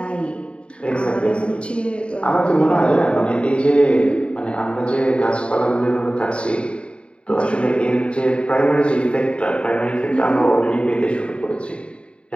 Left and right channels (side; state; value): right; late; 0.057 ms